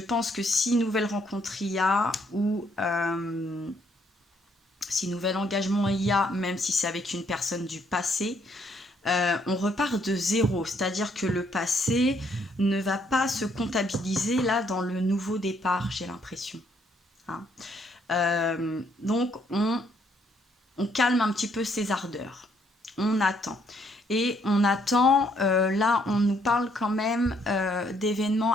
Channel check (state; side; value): normal; both; correlation 0.69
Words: que si nouvelle rencontre il y a, ou si nouvel engagement il y a, même si c'est avec une personne du passé, on repart de zéro. C'est-à-dire que le passé ne va pas se comptabiliser là dans le nouveau départ, j'ai l'impression. Hein. Donc on calme un petit peu ses ardeurs. On attend. Et on attend, là on nous parle quand même